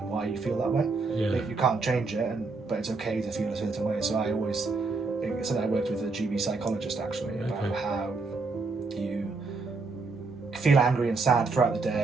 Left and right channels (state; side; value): quieter; left; 3.9 dB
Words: and why you feel that way. You can't change it, but it's okay to feel a certain way. So I always, it's something I worked with a GB psychologist actually, about how you feel angry and sad throughout the